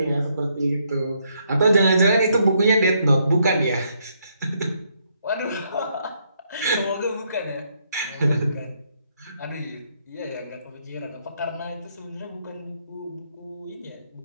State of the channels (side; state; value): both; inverted; correlation -0.74